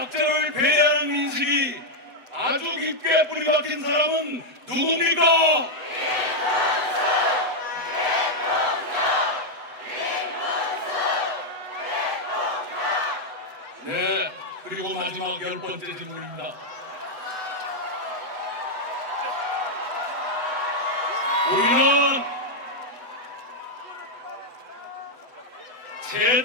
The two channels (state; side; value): late; left; 8.1 ms